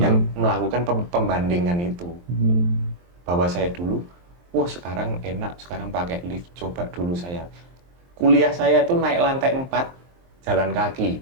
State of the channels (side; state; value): left; late; 23 ms